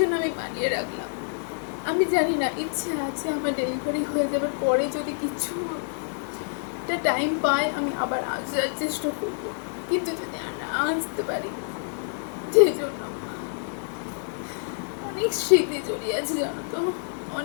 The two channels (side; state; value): right; silent; digital silence